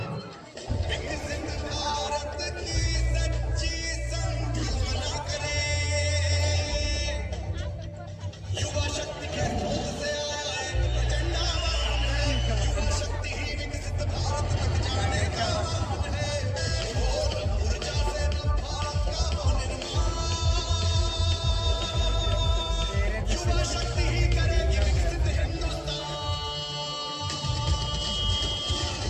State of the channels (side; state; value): both; identical; correlation 1.00